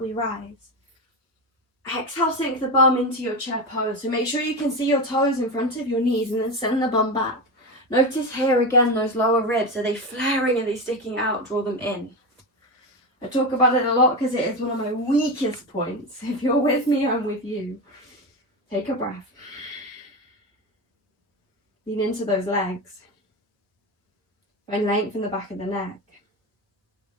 we rise. Exhale, sink the bum into your chair pose. So make sure you can see your toes in front of your knees and then send the bum back. Notice here again, those lower ribs, are they flaring, are they sticking out? Draw them in. I talk about it a lot because it is one of my weakest points. If you're with me, I'm with you. Take a breath. Lean into those legs. Find length in the back of the neck.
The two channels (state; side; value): normal; both; correlation 0.19